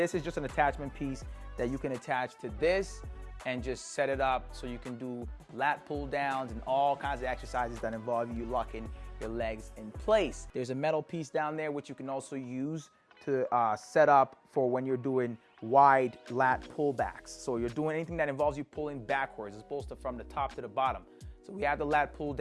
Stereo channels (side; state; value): both; identical; correlation 1.00